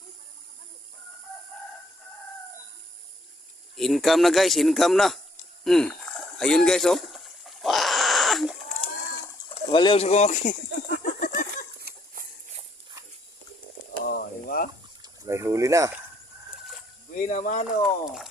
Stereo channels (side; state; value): both; normal; correlation 0.68